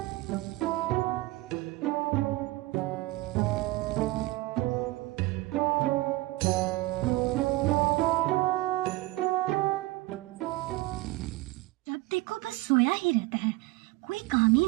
देखो बस सोया ही रहता है, कोई काम ही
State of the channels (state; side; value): quieter; left; 20.0 dB